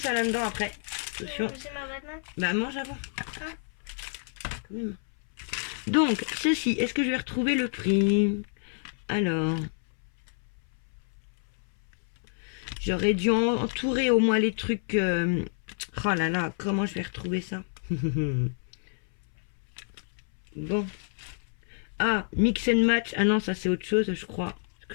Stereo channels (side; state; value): right; silent; 59 dB below the other